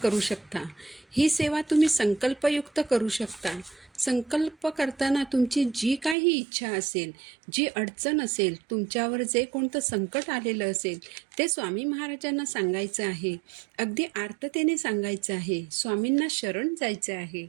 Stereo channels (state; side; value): drops out; left; at 6.2 s